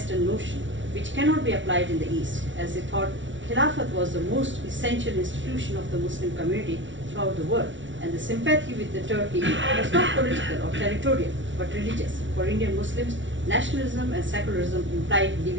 notion which cannot be applied in the East, as they thought Khilafat was the most essential institution of the Muslim community throughout the world, and the sympathy with the Turkey was not political or territorial, but religious. For Indian Muslims, nationalism and secularism implied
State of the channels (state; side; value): late; left; 0.55 ms